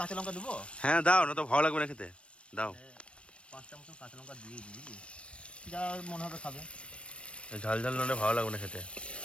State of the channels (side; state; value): right; late; 0.060 ms